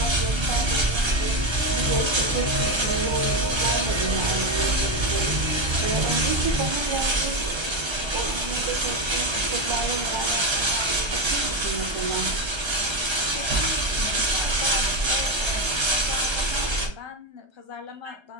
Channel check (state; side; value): late; left; 1.3 ms